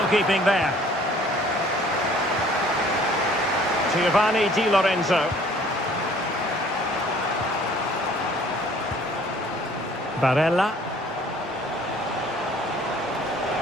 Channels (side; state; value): both; normal; correlation 0.55